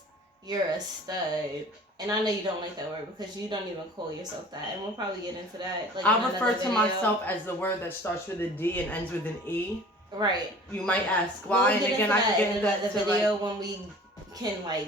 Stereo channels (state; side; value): normal; both; correlation 0.45